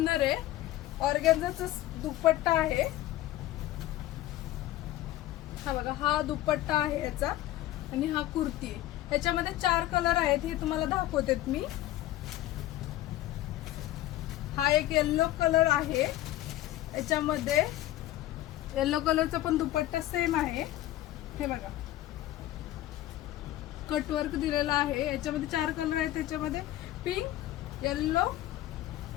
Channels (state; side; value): quieter; right; 14.9 dB